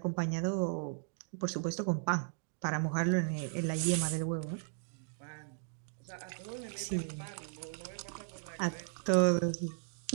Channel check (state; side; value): silent; left; digital silence